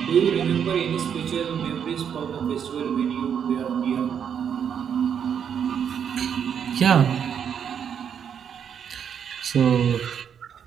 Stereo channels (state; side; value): quieter; left; 8.0 dB